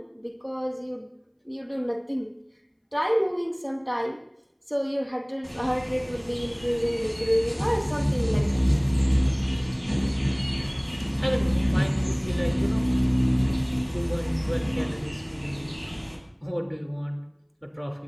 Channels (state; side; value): identical; both; correlation 1.00